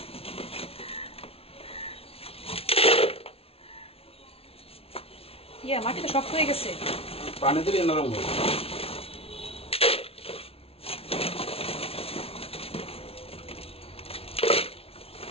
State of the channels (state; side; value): late; right; 0.28 ms